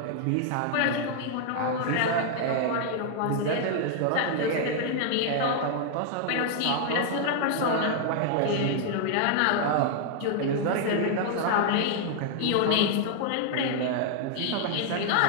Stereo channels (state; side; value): different; both; correlation 0.00